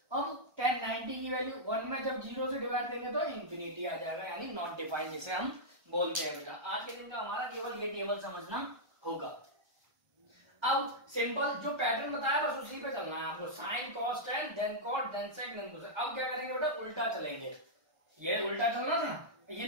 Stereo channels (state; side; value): late; left; 1.3 ms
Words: अब tan 90 की वैल्यू 1 में जब 0 से डिवाइड देंगे तो इंफिनिटी आ जाएगा, यानी नॉट डिफाइंड जिसे हम बोलते हैं बेटा। आज के दिन का हमारा केवल ये टेबल समझना होगा। अब सिंपल जो पैटर्न बताया बस उसी पे चलना है आपको, sine cos tan then cot then sec then cosec। अब क्या करेंगे बेटा, उल्टा चलेंगे। ये उल्टा चलना था, ये